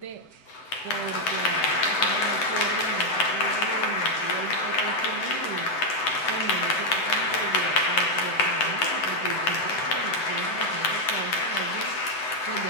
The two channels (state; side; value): late; right; 7.9 ms